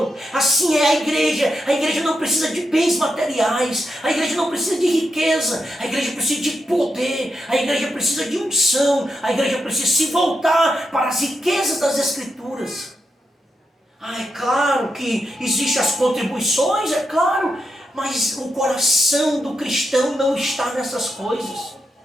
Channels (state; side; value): normal; both; correlation 0.84